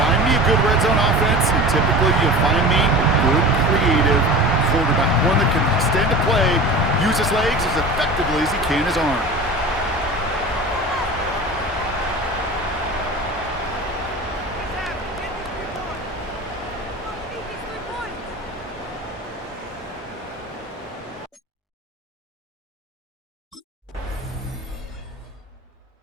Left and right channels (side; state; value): both; normal; correlation 0.35